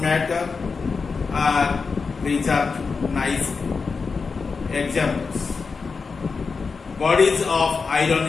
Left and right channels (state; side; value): quieter; right; 4.8 dB